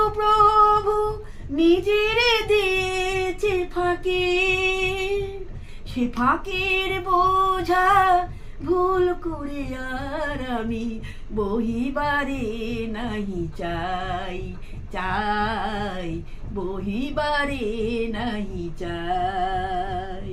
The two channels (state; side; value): identical; both; correlation 1.00